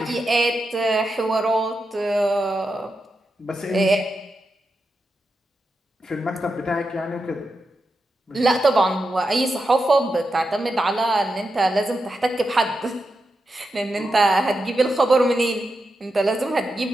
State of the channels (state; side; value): normal; both; correlation 0.88